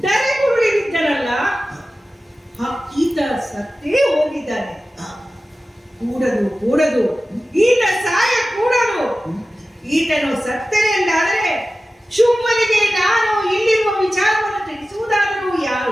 ಧರೆಗುರುಳಿ ಬಿದ್ದನಲ್ಲ, ಈತ ಸತ್ತೇ ಹೋಗಿದ್ದಾನೆ. ಕೂಡದು ಈತ ಸಾಯ ಕೂಡದು. ಈತನು ಸತ್ತನೆ ಎಂದಾದರೆ ಶುಂಭನಿಗೆ ನಾನು ಇಲ್ಲಿರುವ ವಿಚಾರವನ್ನು ತಿಳಿಸುವುದಾದರೂ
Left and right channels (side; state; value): both; normal; correlation 0.95